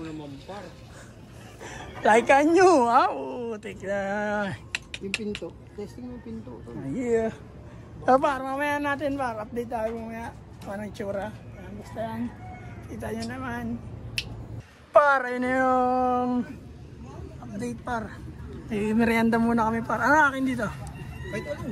naman, par? Like a new, ha? Oo, take na. Yung pinto. Testing mo yung pinto. Yeah. So, par, mamaya natin, par. Update tayo mamaya. Anong tsura. Ayan, basta yan. Kita nyo naman. Par, ayun na yung update, par. Eh, merienda muna kami, par. Ano akin dito? Kahit ano,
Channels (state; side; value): identical; both; correlation 1.00